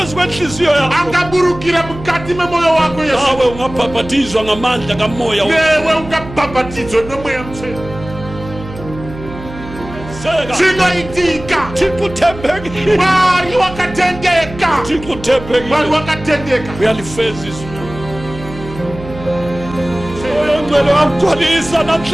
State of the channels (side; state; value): right; noise; hum, 13 dB below the sound